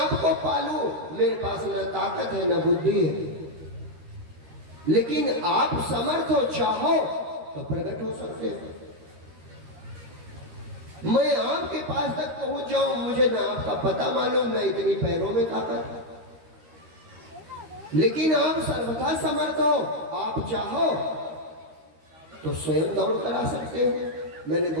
पालू, मेरे पास न ताकत है न बुद्धि है, लेकिन आप समर्थ हो, चाहो तो प्रकट हो सकते हो। मैं आपके पास तक पहुंच जाऊं, मुझे ना आपका पता मालूम, ना इतनी पैरों में ताकत, लेकिन आप सर्वथा समर्थ हो। आप चाहो तो स्वयं दौड़ कर आ सकते हो। मैंने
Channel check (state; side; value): late; left; 13 ms